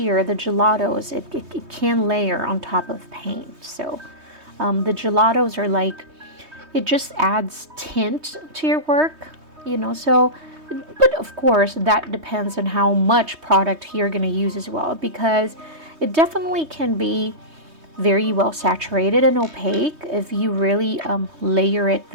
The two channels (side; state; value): left; late; 3.2 ms